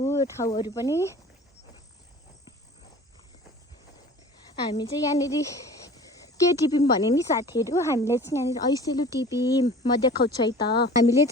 ठाउँहरू पनि। हामी चाहिँ यहाँनिर के टिप्यौँ भने नि साथीहरू, हामीले चाहिँ यहाँनिर ऐसेलु टिप्यौँ। म देखाउँछु है त। हामीले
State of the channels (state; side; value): normal; both; correlation 0.43